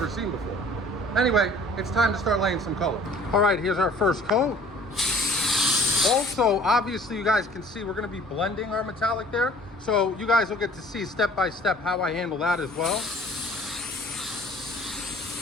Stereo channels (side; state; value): both; normal; correlation 0.51